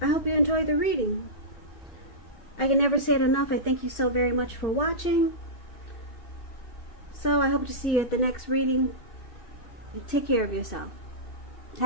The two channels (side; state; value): right; late; 2.6 ms